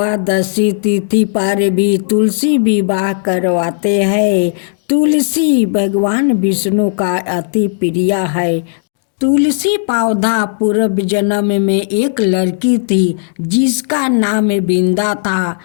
तिथि पर भी तुलसी विवाह करवाते हैं। तुलसी भगवान विष्णु का अति प्रिय है। तुलसी पौधा पूर्व जन्म में एक लड़की थी जिसका नाम बिंदा था।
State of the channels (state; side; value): silent; right; digital silence